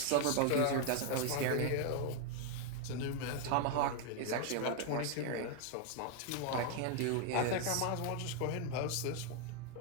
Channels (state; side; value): different; both; correlation 0.01